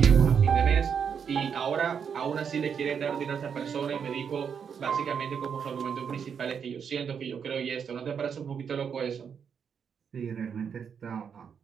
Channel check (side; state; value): left; quieter; 7.1 dB